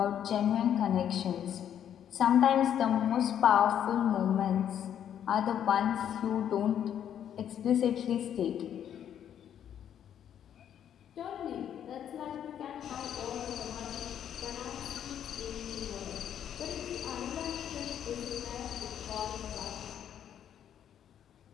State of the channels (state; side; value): quieter; right; 9.6 dB